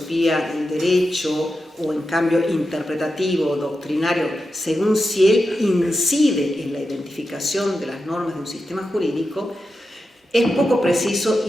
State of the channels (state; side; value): normal; both; correlation 0.89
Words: del derecho o en cambio interpretativo o doctrinario, según si él incide en la identificación de las normas de un sistema jurídico, es poco preciso